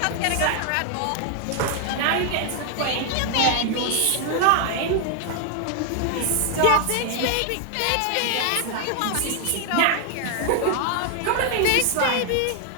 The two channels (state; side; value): different; both; correlation 0.00